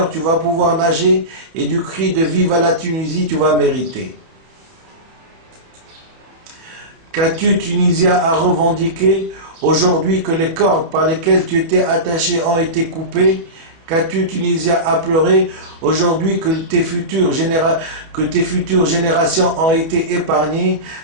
tu vas pouvoir nager et du cri de vive à la Tunisie tu vas mériter. Qu'as-tu, Tunisia, à revendiquer aujourd'hui que les cordes par lesquelles tu étais attaché ont été coupées? Qu'as-tu, Tunisia, à pleurer aujourd'hui que tes futures générations ont été épargnées?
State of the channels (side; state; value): left; late; 30 ms